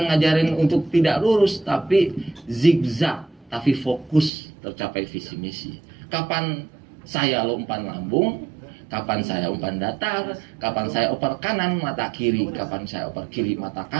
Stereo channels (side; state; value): left; drops out; at 4.3 s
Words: ngajarin untuk tidak lurus, tapi zigzag, tapi fokus tercapai visi misi. Kapan saya umpan lambung, kapan saya umpan datar, kapan saya oper kanan mata kiri, kapan saya oper kiri mata